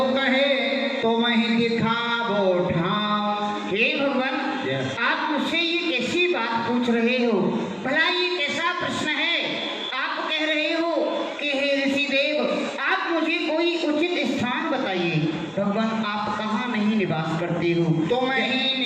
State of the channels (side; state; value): both; identical; correlation 1.00